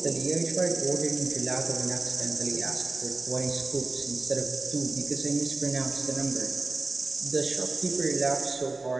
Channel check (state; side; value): quieter; left; 3.4 dB